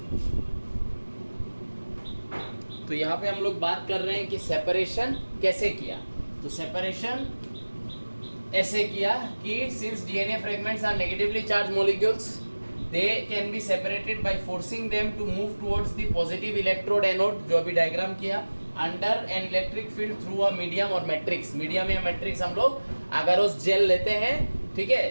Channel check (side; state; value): both; inverted; correlation -1.00